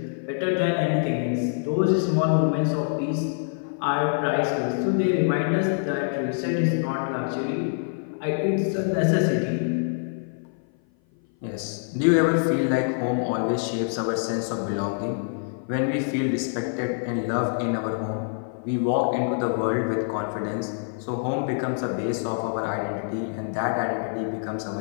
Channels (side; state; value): right; silent; 57 dB below the other